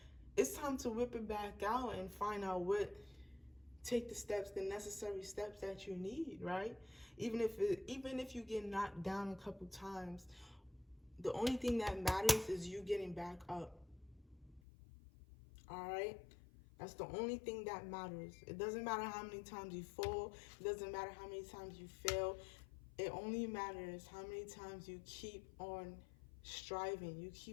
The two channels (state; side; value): drops out; right; at 14.6 s